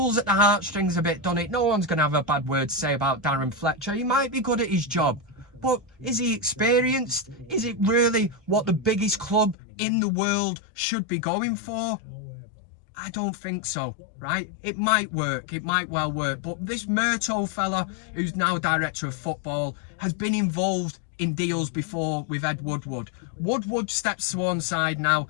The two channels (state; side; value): drops out; right; at 9.6 s